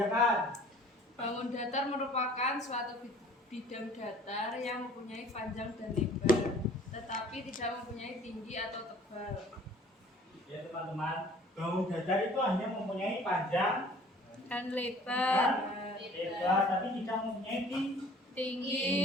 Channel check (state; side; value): normal; both; correlation 0.51